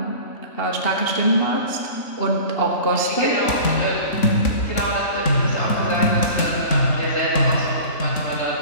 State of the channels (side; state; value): right; late; 3.6 ms